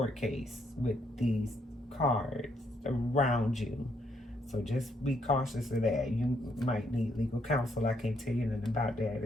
case with these cards around you. So just be cautious of that. You might need legal counsel. I can't tell you nothing about that.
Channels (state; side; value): normal; both; correlation 0.73